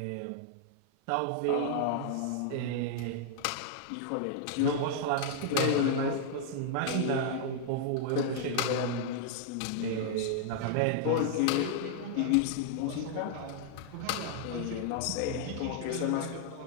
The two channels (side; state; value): both; different; correlation -0.01